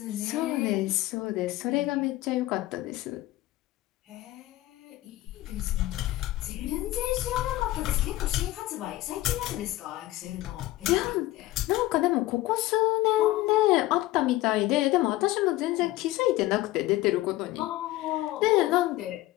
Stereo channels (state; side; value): quieter; right; 16.9 dB